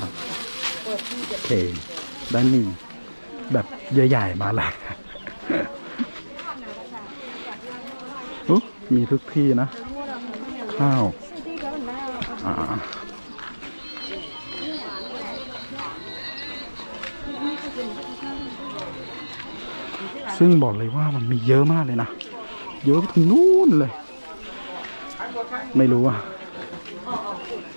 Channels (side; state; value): both; inverted; correlation -1.00